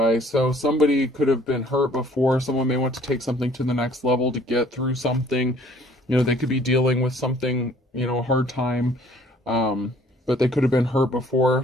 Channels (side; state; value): both; normal; correlation 0.57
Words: So somebody could have been hurt before. Someone may want to take something to the next level to get through something. You know, they could be dealing with something, you know, a hard time. But they could have been hurt